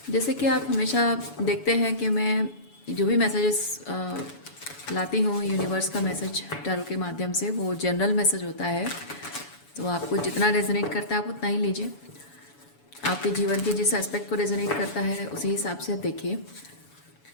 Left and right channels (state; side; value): late; right; 7.0 ms